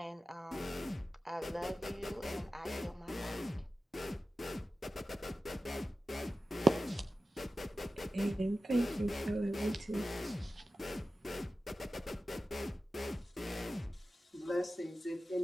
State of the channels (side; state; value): both; normal; correlation 0.94